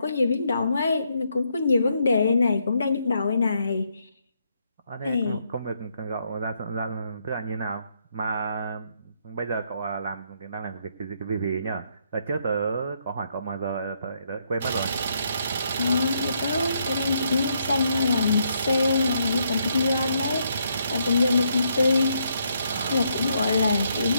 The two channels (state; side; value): inverted; both; correlation -0.75